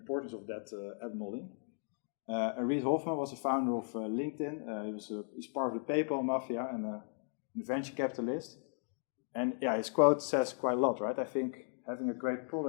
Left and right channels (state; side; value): silent; right; 54 dB below the other